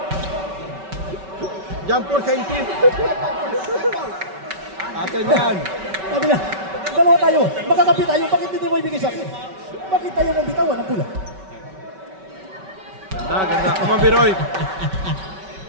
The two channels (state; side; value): late; left; 5.2 ms